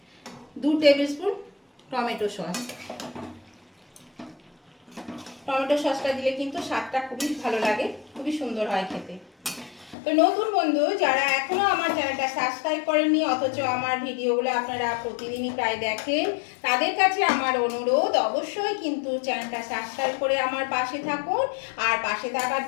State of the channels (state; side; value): drops out; right; at 10.0 s